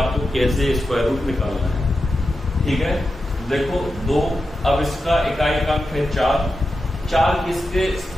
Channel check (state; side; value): normal; both; correlation 0.90